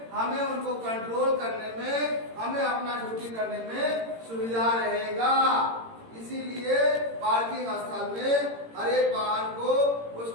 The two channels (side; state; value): left; late; 18 ms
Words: हमें उनको कंट्रोल करने में, हमें अपना ड्यूटी करने में सुविधा रहेगा। इसीलिए पार्किंग स्थल में हर एक वाहन को